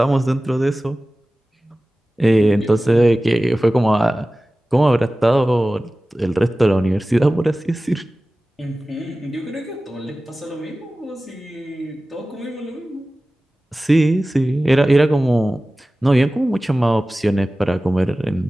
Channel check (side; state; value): both; normal; correlation 0.97